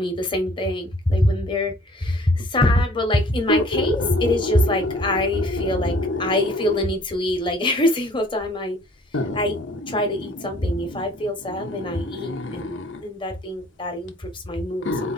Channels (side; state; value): both; normal; correlation 0.55